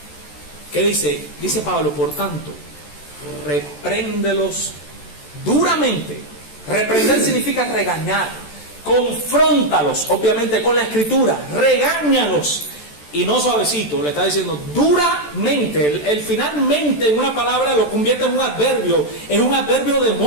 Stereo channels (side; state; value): right; late; 14 ms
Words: ¿Qué dice? Dice Pablo, por tanto, repréndelos duramente. Reprender significa regañar. Confróntalos, obviamente, con la escritura. Regáñalos. Y no suavecito, le está diciendo duramente. El finalmente en una palabra lo convierte en un adverbio. Es un adverbio de